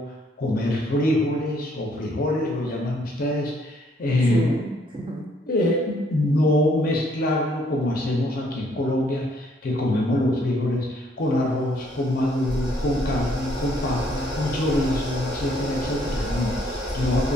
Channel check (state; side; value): normal; both; correlation 0.67